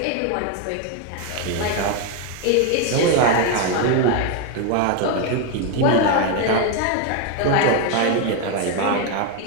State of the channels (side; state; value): both; different; correlation 0.01